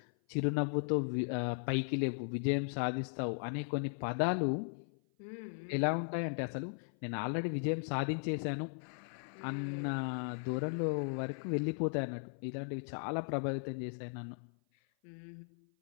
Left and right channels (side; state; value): right; silent; 53 dB below the other